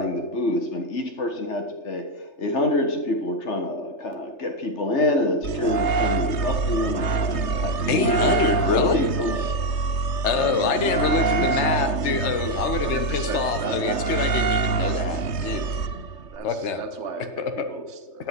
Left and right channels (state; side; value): late; right; 3.3 ms